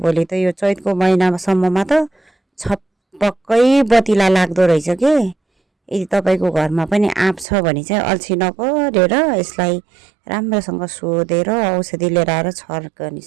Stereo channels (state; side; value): drops out; left; at 7.5 s